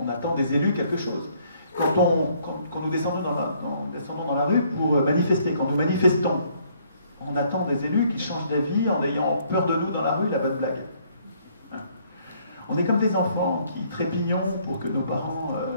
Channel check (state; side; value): inverted; both; correlation -0.65